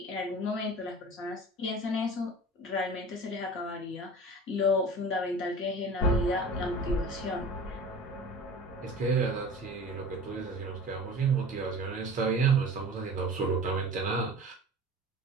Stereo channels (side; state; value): both; normal; correlation 0.38